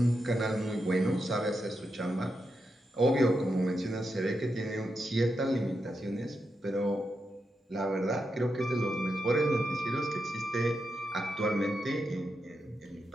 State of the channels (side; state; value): both; normal; correlation 0.86